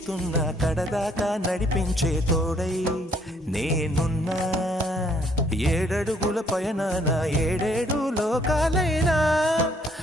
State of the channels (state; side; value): normal; both; correlation 0.66